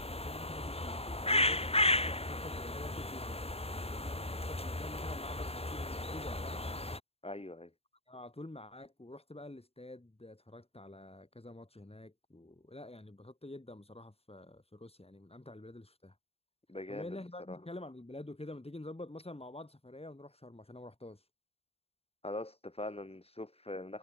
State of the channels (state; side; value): late; right; 0.29 ms